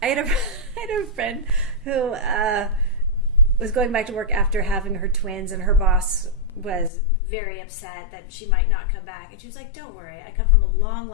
a friend who was going back to work after having her twins, and her boss was very upset that she might not come back. And she was like, don't worry, I come from a long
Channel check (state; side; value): drops out; right; at 6.9 s